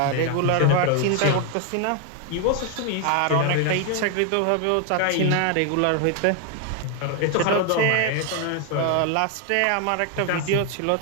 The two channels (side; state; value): both; different; correlation 0.00